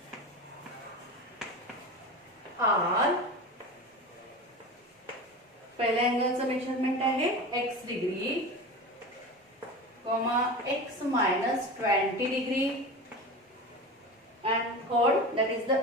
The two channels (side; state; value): both; normal; correlation 0.29